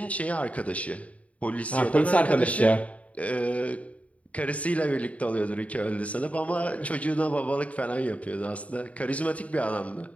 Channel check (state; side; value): late; right; 0.067 ms